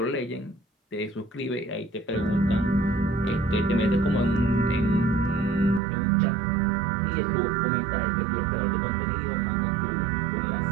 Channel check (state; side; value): drops out; left; at 5.8 s